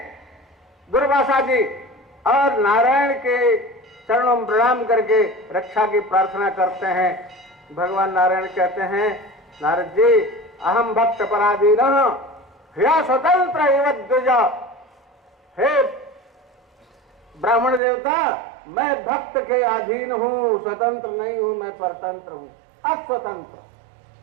दुर्वासा जी और नारायण के चरणों में प्रणाम करके रक्षा की प्रार्थना करते हैं। भगवान नारायण कहते हैं नारद जी अहम भक्त पराधीन ह्या स्वतंत्र एवं द्विजा। हे ब्राह्मण देवता, मैं भक्त के अधीन हूं, स्वतंत्र नहीं हूं, मैं परतंत्र हूं, अस्वतंत्र।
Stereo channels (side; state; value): left; drops out; at 17.8 s